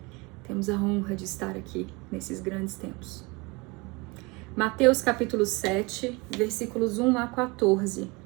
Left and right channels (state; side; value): quieter; left; 26.4 dB